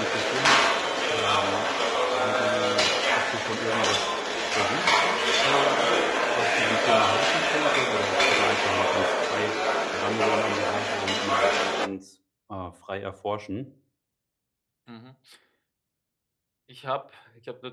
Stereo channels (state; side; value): identical; both; correlation 1.00